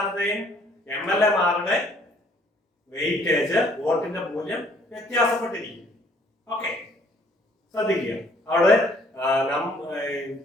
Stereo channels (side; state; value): both; normal; correlation 0.61